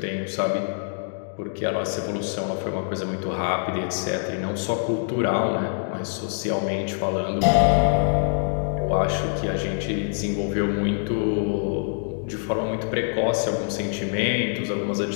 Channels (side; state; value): right; silent; digital silence